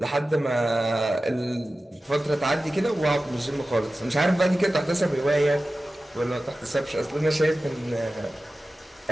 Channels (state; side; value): normal; both; correlation 0.95